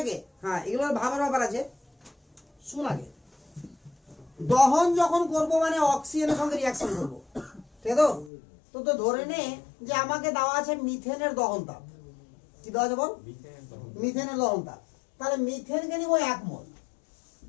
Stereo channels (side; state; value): right; drops out; at 8.3 s